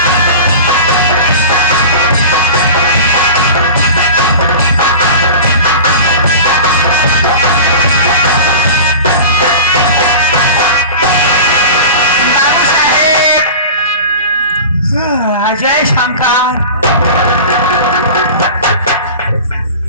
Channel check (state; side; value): inverted; both; correlation -0.34